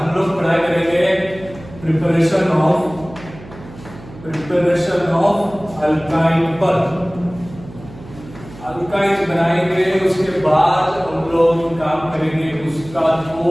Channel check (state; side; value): noise; right; hum, 18 dB below the sound